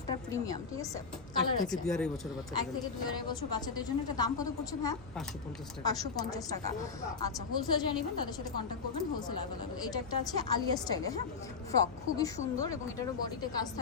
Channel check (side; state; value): right; quieter; 5.2 dB